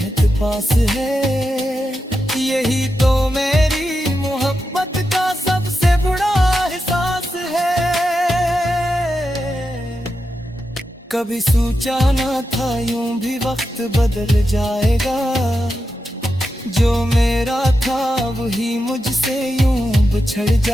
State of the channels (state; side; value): normal; both; correlation 0.88